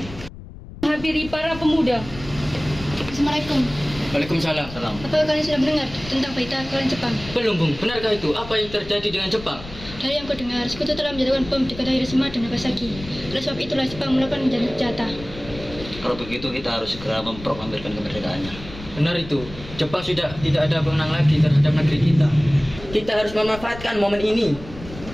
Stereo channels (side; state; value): left; noise; rumble, 14 dB below the sound